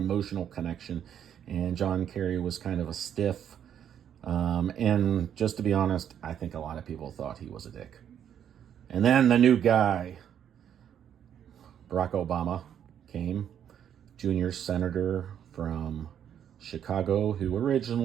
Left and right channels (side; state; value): left; quieter; 9.3 dB